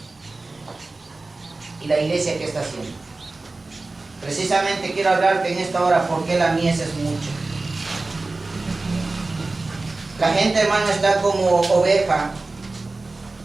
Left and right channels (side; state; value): left; quieter; 3.4 dB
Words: ¿Y la iglesia qué está haciendo? Precisamente quiero hablarte en esta hora por qué la mies es mucha. La gente, hermano, está como oveja